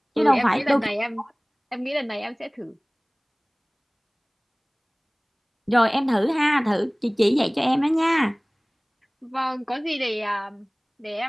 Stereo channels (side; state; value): both; identical; correlation 1.00